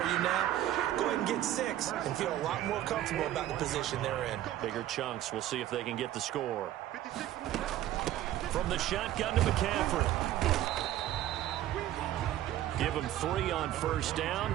now. Go ahead and get 6 and feel a lot more comfortable about the position they're in. Bigger chunks. We'll see if they can get the score. From the shotgun to McCaffrey. Give him 3 on first down.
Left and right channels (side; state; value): left; quieter; 13.1 dB